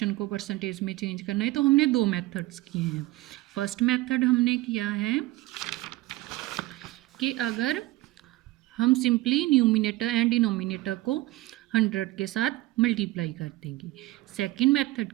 को परसेंटेज में चेंज करना है, तो हमने दो मेथड्स किए हैं। फर्स्ट मेथड हमने किया है कि अगर हम सिंपली न्यूमिनेटर एंड डिनोमिनेटर को 100 के साथ मल्टीप्लाई कर देंगे। सेकंड मेथड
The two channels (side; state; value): left; quieter; 18.5 dB